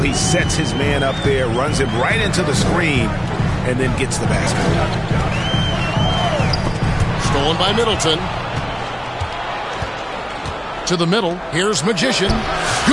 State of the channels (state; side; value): identical; both; correlation 1.00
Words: he sets his man up there, runs him right into the screen, and then gets the basket. Stolen by Middleton. To the middle. Here's Magician.